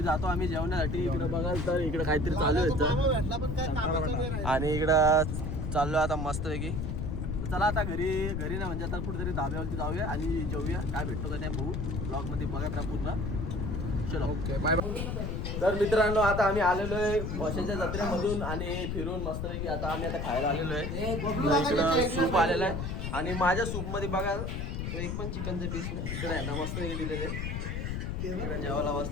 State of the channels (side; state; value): left; noise; rumble, 3 dB below the sound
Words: जातो आम्ही जेवणासाठी इकडे बघाल तर इकडे काहीतरी चालू आहे आणि इकडं चाललो आता मस्तपैकी चला आता घरी ना म्हणजे आता कुठेतरी धाब्यावरती जाऊया आणि जेवूया काय भेटतो का नाही बघू ब्लॉग मध्ये बघा त्या पूर्ण चलो ओके बाय बाय तर मित्रांनो आता आम्ही आलेलो आहे वर्षाच्या जत्रेमधून आणि फिरून मस्तपैकी आता आम्ही आता खायला आलेलो आहे इकडं सूप आलेलं आहे आणि माझ्या सूप मध्ये बघा एक पण चिकनचे पीस नाही इकडे आहे ना मस्तपैकी दिलेले इकडे जेवायला